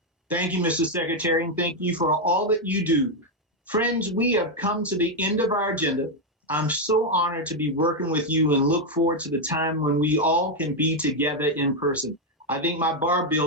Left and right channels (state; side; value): normal; both; correlation 0.03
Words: Thank you, Mr. Secretary, and thank you for all that you do. Friends, we have come to the end of our agenda. I'm so honored to be working with you and look forward to the time when we all can be together in person. I think my bar